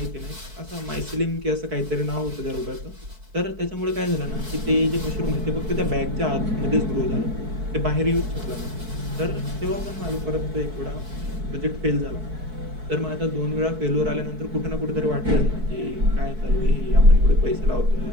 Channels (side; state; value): left; late; 4.6 ms